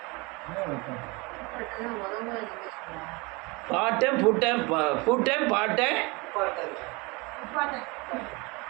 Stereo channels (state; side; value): quieter; left; 26.3 dB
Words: பாட்டன், பூட்டன், பூட்டன், பாட்டன்,